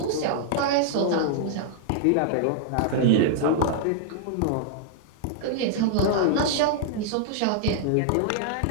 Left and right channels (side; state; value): both; different; correlation -0.01